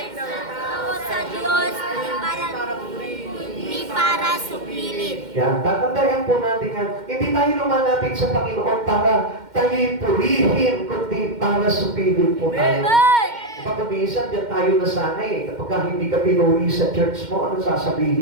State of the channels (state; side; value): late; left; 2.1 ms